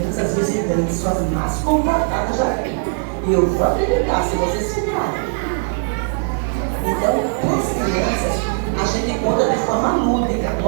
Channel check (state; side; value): silent; left; digital silence